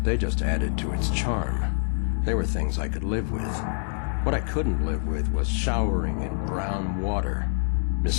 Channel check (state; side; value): silent; right; digital silence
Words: they just added to its charm. They were things I could live with. What I couldn't live with was showering in brown water,